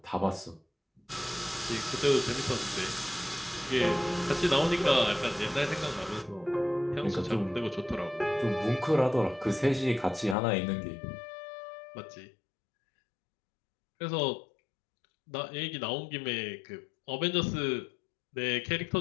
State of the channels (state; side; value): drops out; right; at 10.4 s